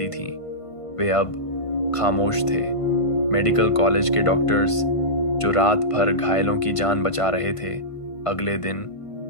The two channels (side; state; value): right; late; 1.5 ms